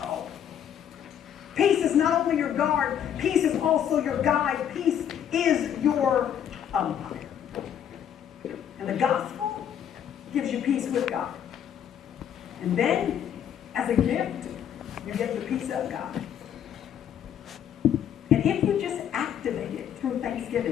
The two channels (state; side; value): quieter; right; 9.2 dB